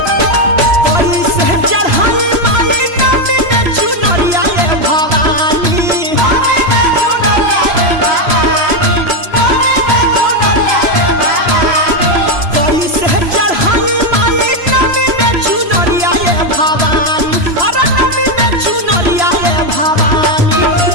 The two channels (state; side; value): late; left; 3.0 ms